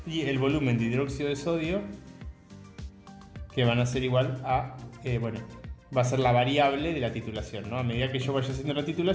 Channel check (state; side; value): identical; both; correlation 1.00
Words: y el volumen de hidróxido de sodio que van a ser igual a, va a ser la variable de la titulación, ¿no? A medida que yo vaya haciendo la